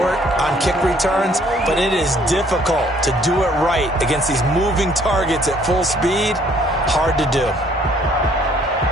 on kick returns, but it is difficult to do it right against these moving targets at full speed. Hard to do.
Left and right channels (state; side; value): normal; both; correlation 0.62